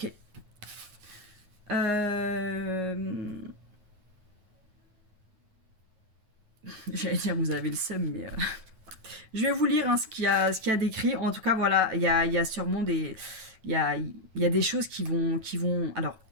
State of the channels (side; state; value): left; late; 9.1 ms